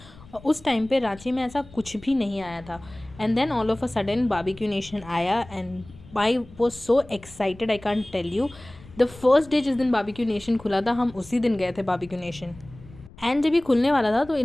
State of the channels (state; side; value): noise; left; rumble, 21 dB below the sound